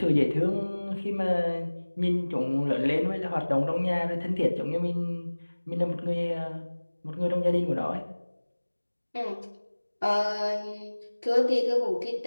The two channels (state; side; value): inverted; both; correlation -1.00